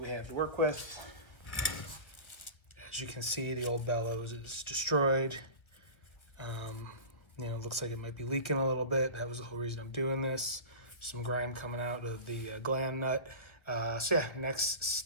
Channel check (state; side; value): late; right; 1.1 ms